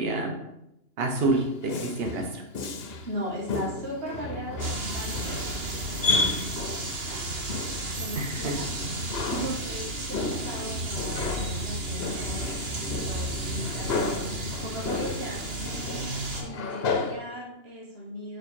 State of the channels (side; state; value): left; late; 2.9 ms